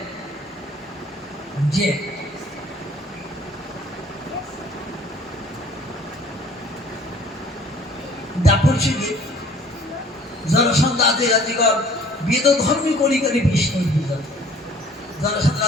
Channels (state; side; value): normal; both; correlation 0.53